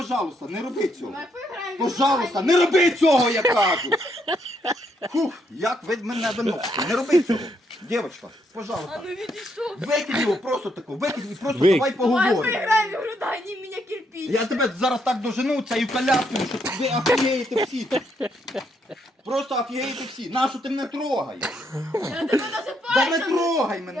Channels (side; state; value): both; normal; correlation 0.75